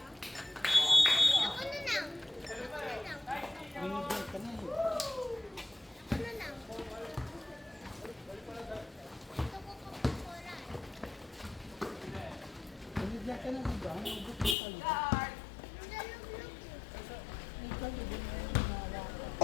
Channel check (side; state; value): right; drops out; at 14.6 s